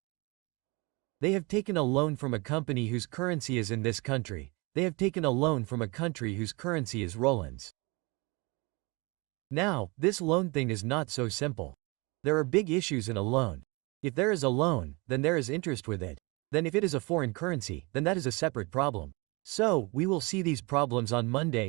They have taken a loan from a company whose currency is in this country. They have taken a loan from a country whose currency is Roland's. Now, this loan thing is not so simple. There are big issues in a loan. If there is a loan, then there is interest with it. Then if it is a foreign currency, then that is a separate problem. So, we will see these problems on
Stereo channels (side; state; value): left; quieter; 27.1 dB